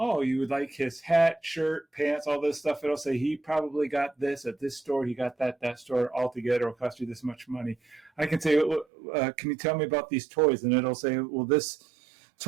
you would like his hat, shirt, pants, all this stuff. It'll say, he probably got this at this store. He got that store altogether. It'll cost you this much money. I can say, can you tell me about these toys? And it'll say, well, this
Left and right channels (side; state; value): left; drops out; at 8.8 s